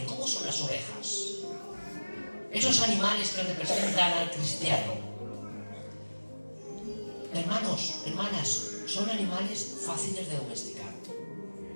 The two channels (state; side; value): inverted; both; correlation -1.00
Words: ¿cómo son las ovejas? Esos animales que representan al cristiano. Hermanos, hermanas, son animales fáciles de domesticar.